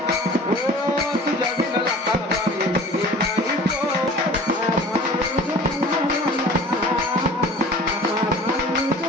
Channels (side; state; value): both; normal; correlation 0.43